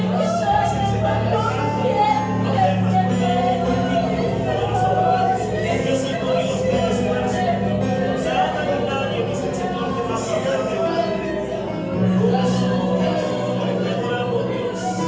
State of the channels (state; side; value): identical; both; correlation 1.00